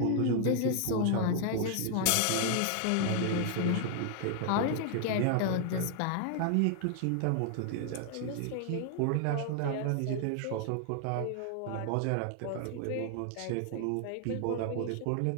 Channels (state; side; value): different; both; correlation 0.00